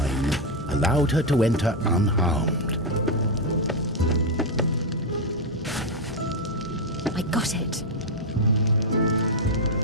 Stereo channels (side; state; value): both; normal; correlation 0.03